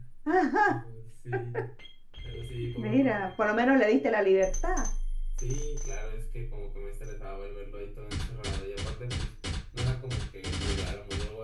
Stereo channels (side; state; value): both; identical; correlation 1.00